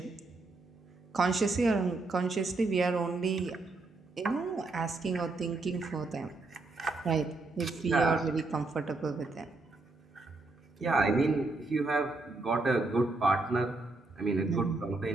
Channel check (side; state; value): left; quieter; 3.3 dB